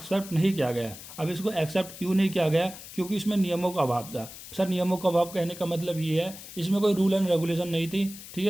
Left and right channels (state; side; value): noise; left; hiss, 14 dB below the sound